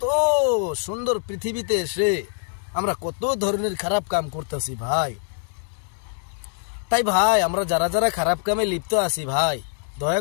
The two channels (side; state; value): right; silent; 63 dB below the other